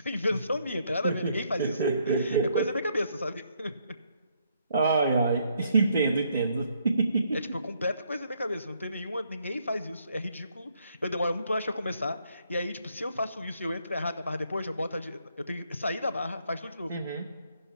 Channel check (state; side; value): inverted; both; correlation -0.71